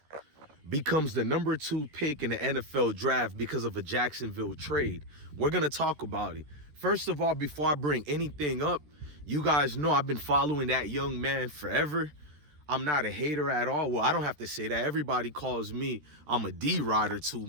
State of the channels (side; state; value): left; late; 13 ms